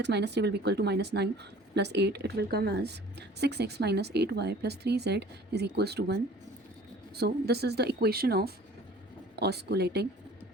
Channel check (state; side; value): normal; both; correlation 0.48